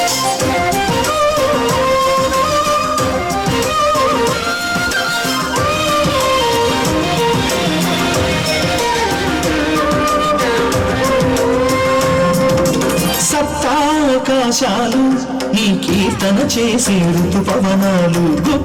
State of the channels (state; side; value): identical; both; correlation 1.00